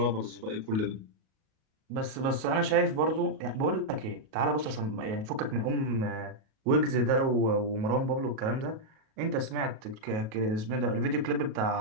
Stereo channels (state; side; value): late; left; 37 ms